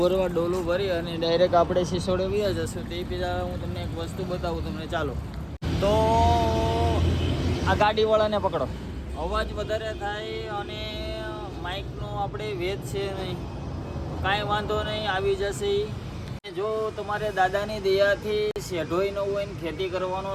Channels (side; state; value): both; identical; correlation 1.00